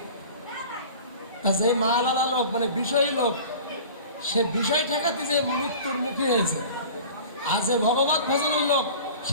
তা সেই মালালা লোক মানে বিষয়ী লোক, সে বিষয় ঠেকাতে যে মৃত্যুর মুখে হয়েছে। আর যে ভগবত ভজনের লোক,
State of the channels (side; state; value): both; inverted; correlation -0.41